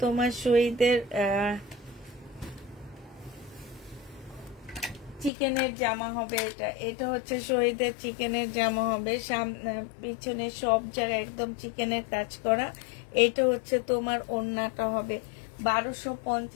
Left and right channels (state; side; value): drops out; right; at 5.3 s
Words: তোমার শহীদের চিকেনের জামা হবে। এটা হচ্ছে শহীদের চিকেনের জামা হবে। সামনে পিছনে সব জায়গায় একদম চিকেনের কাজ করা। এটা হচ্ছে তোমার ওড়নাটা হবে।